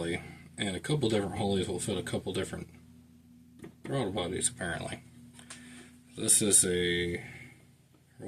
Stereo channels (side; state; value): both; identical; correlation 1.00